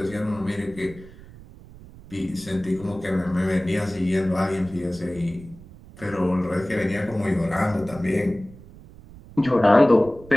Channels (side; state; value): right; noise; rumble, 19 dB below the sound